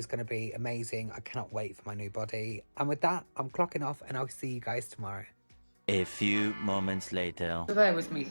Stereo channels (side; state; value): both; inverted; correlation -1.00